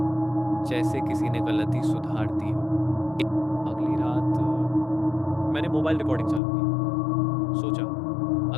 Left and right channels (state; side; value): drops out; right; at 6.4 s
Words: जैसे किसी ने गलती सुधार दी हो। अगली रात मैंने मोबाइल रिकॉर्डिंग चालू की। सोचा,